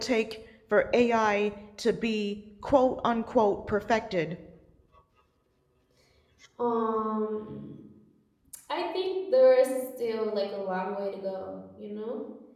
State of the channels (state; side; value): identical; both; correlation 1.00